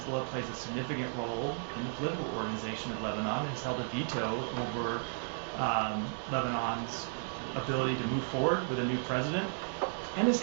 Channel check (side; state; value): left; silent; digital silence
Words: plays a significant role in the political organization of Lebanon and has held a veto over Lebanon's ability to move forward with a new president, and has